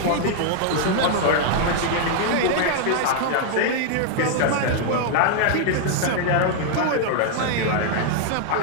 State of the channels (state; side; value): different; both; correlation 0.00